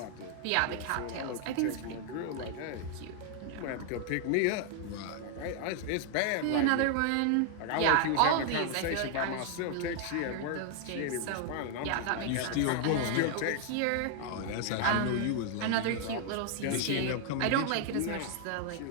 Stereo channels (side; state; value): both; different; correlation 0.00